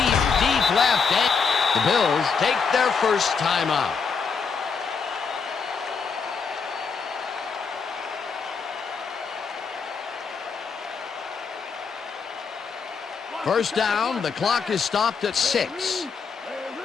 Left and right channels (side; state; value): right; quieter; 5.5 dB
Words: left, and the Bills take their first timeout. First down, the clock is stopped at 6.